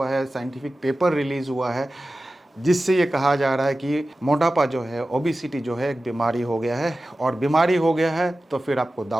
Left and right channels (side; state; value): both; normal; correlation 0.95